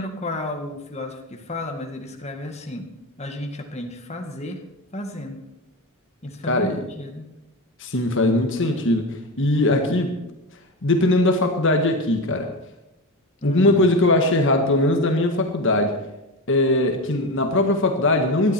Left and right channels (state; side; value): normal; both; correlation 0.20